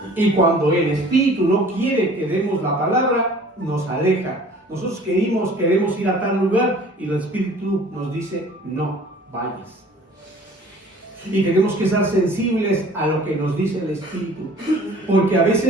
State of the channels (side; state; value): both; normal; correlation 0.49